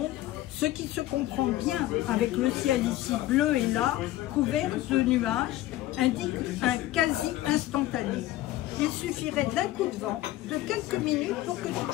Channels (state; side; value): quieter; right; 15.5 dB